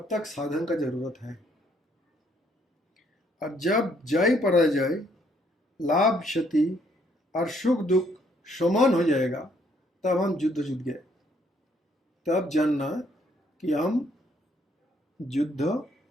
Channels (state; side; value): normal; both; correlation 0.68